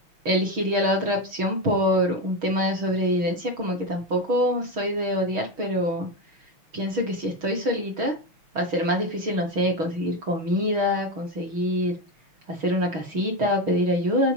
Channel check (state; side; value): late; left; 6.3 ms